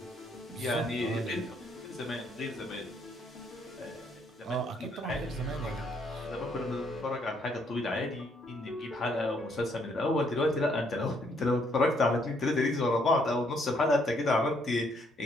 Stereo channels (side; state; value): both; normal; correlation 0.70